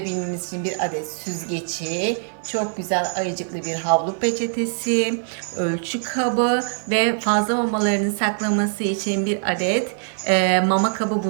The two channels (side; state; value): left; silent; 64 dB below the other